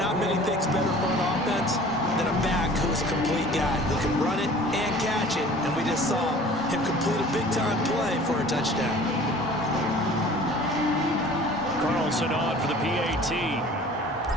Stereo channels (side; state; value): both; normal; correlation 0.46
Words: many things better for an offense than a back who's a complete guy who can run it and catch it. And we just saw him complete a big-time play for a touchdown. Carlson on for the PAT.